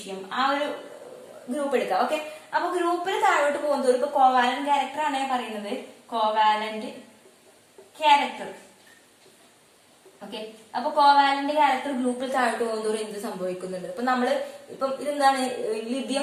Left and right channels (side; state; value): both; identical; correlation 1.00